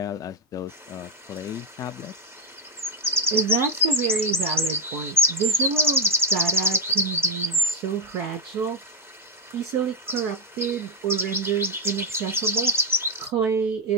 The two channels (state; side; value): normal; both; correlation 0.05